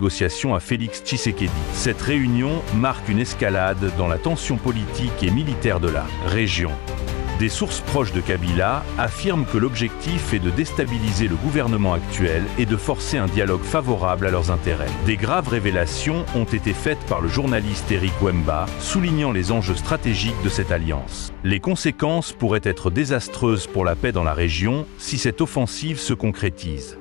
à Félix Tshisekedi. Cette réunion marque une escalade dans la tension politique et militaire de la région. Des sources proches de Kabila affirment que l'objectif est de déstabiliser le gouvernement actuel et de forcer un dialogue favorable à leurs intérêts. Des graves révélations ont été faites par le journaliste Eric Wemba, soulignant les enjeux stratégiques de cette alliance. Les conséquences pourraient être désastreuses pour la paix dans la région si cette offensive se concrétise.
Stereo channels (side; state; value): right; quieter; 21.9 dB